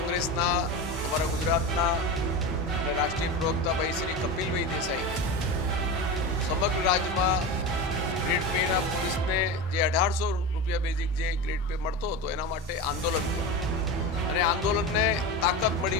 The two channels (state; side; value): normal; both; correlation 0.24